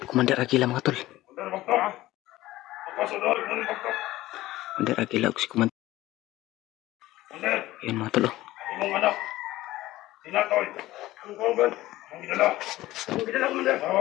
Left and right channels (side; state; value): right; quieter; 16.6 dB